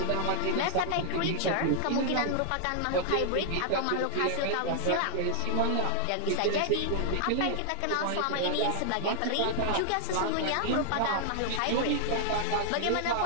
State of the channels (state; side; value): different; both; correlation 0.00